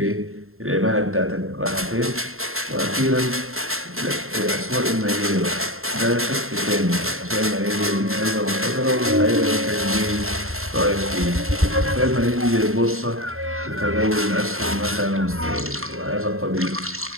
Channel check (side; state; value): left; late; 0.61 ms